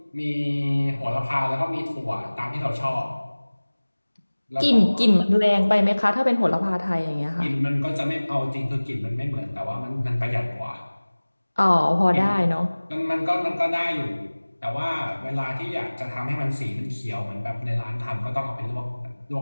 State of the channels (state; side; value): inverted; both; correlation -1.00